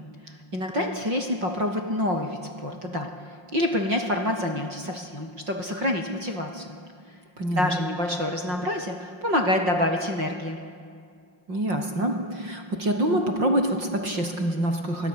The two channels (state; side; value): late; left; 5.6 ms